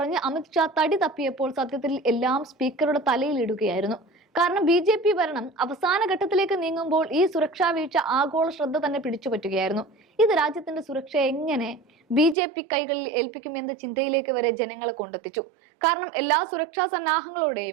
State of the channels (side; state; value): left; drops out; at 12.4 s